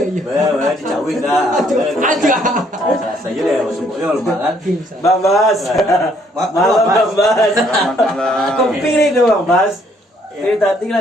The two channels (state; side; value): normal; both; correlation 0.66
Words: Dicawin dah. Aja. Saya deh semuanya rumah kan. Bang Bas. Malam Bang Bas. Kopi nih tuh Bang Bas. Ini tadi